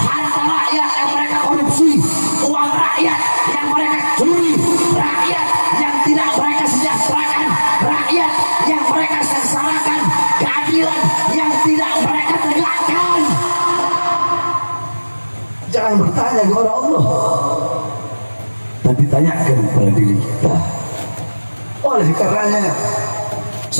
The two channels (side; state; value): both; inverted; correlation -1.00